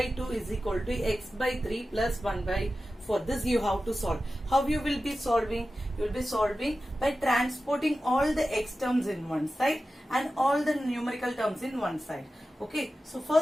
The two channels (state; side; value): normal; both; correlation 0.94